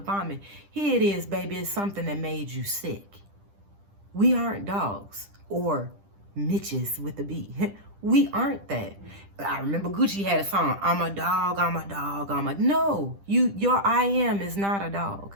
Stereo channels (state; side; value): late; left; 10 ms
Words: Here it is, baby. It's something that made you sick. We aren't dogs or Mitches with a B. We aren't that. I remember Gucci had a song, I'm a dog, I'm a dog, no, your I am is not a dog.